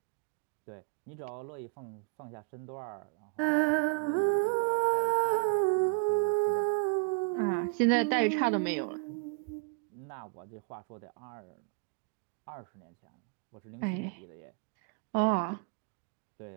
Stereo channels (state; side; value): quieter; left; 32.1 dB